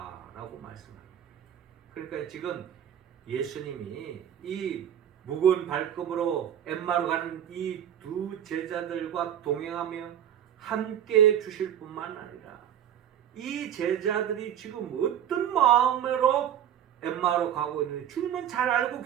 라고 말씀합니다. 그러니까 지금 예수님이 이 무거운 발걸음으로 엠마오로 가는 이 두 제자들과 동행하며 함께 주실 뿐만 아니라 이 제자들이 지금 어떤 마음으로 엠마오로 가고 있는지 주님은 잘 알고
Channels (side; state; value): left; quieter; 10.0 dB